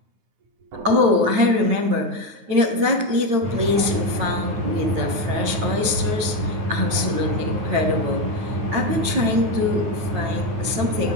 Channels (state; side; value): late; left; 9.5 ms